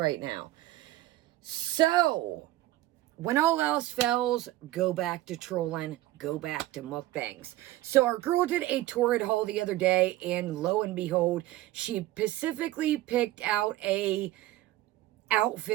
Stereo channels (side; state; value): left; quieter; 16.1 dB